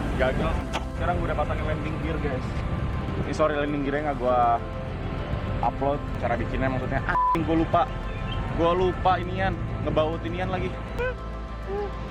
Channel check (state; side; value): identical; both; correlation 1.00